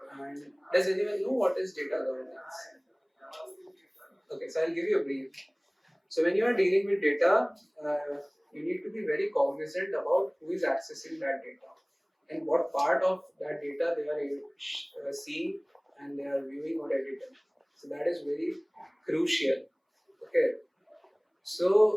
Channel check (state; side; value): identical; both; correlation 1.00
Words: And does anyone know what is data governance? Okay, so I'll give you a brief. So when you are dealing with data, you need to be very cognizant about who is accessing that data and what part of that data they are seeing and they are viewing or editing. So that is very crucial. Okay.